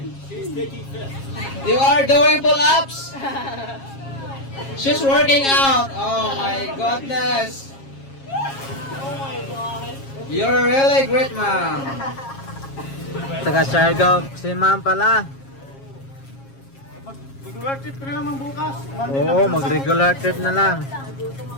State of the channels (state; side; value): late; right; 7.4 ms